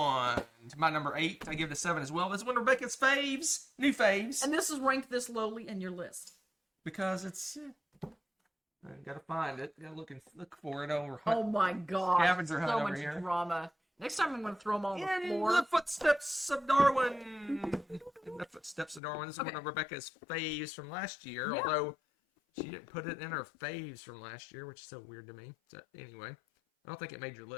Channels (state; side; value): drops out; right; at 19.0 s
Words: to my number 8. I give it a 7 as well. This is one of Rebecca's faves, new faves, And this is ranked this lowly in your list. because it's. I gotta find it. Gotta look for it over. Oh my gosh. Scavenger hunt so over much here. drama. Next time I'm going to throw them all on the In floor. the footsteps of Darwin. In the footsteps of Darwin. This is Okay. one of Rebecca's faves from last year, Yeah. although she didn't put it in her faves from last year, which is so weird to me. So anyway, I don't think it made your